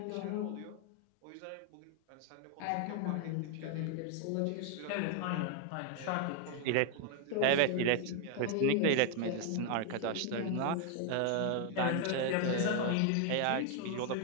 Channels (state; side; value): different; both; correlation 0.00